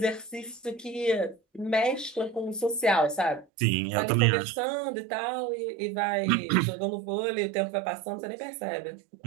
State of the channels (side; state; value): left; drops out; at 3.5 s